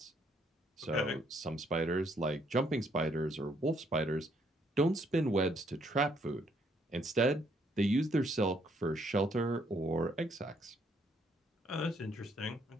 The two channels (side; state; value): both; normal; correlation 0.70